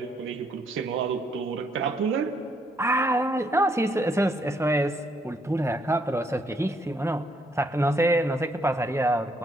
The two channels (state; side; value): normal; both; correlation 0.71